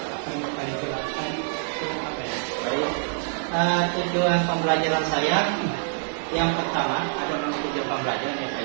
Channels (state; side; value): silent; left; digital silence